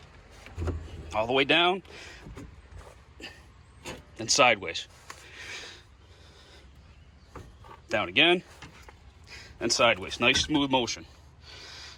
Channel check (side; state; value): both; identical; correlation 1.00